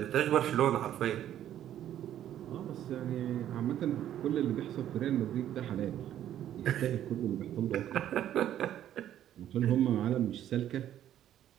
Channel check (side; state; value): left; quieter; 11.4 dB